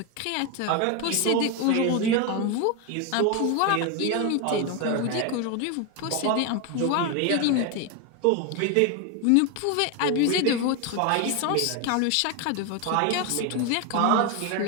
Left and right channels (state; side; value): different; both; correlation 0.02